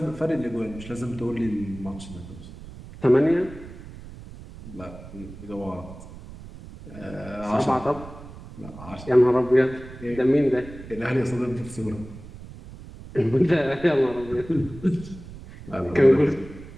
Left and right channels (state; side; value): noise; right; rumble, 15 dB below the sound